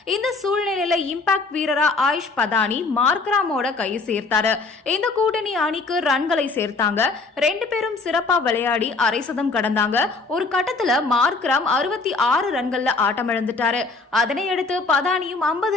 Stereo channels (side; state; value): right; quieter; 3.8 dB